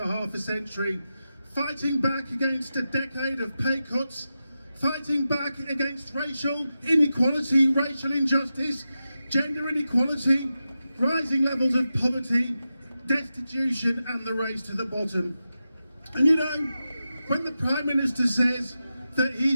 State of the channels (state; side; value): inverted; both; correlation -0.91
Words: half a century, fighting back against a decade of pay cuts, fighting back against racial inequality, racial injustice, gender inequality, rising levels of poverty, destitution and the race to the bottom. And you know, when the Prime Minister says that